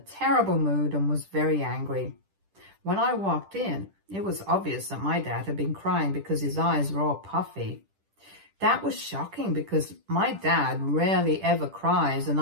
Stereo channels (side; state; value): left; late; 10 ms